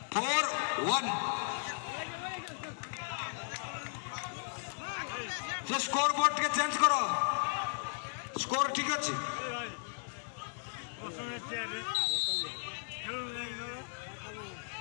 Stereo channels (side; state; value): right; silent; digital silence